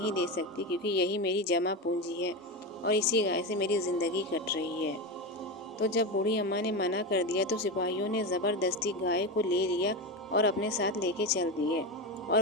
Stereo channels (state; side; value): normal; both; correlation 0.17